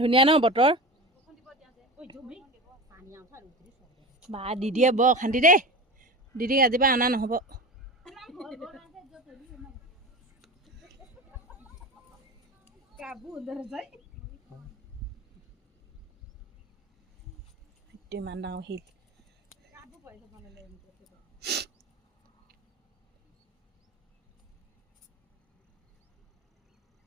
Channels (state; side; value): normal; both; correlation 0.29